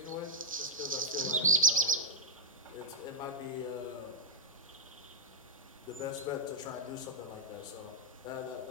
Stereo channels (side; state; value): both; normal; correlation -0.05